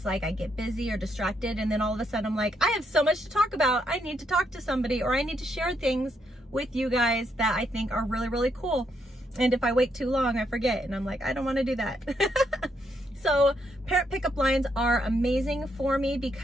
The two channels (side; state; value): both; normal; correlation 0.77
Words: like I get busy or distracted, and then all of a sudden I'm like, I have so much to talk about. I need to talk to somebody, or I need to share things with you guys that I think are really, really cool. And if I wait too long, I forget, and I'm like, I don't want to do that. So parent pickup lines are amazing for me